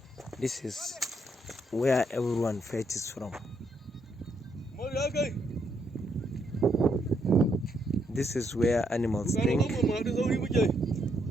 this is where everyone fetches from. This is where animals drink.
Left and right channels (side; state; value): both; normal; correlation 0.75